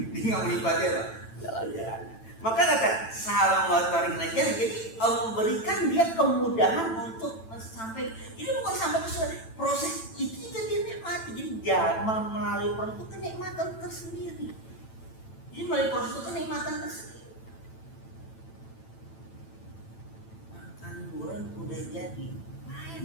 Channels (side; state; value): right; late; 9.0 ms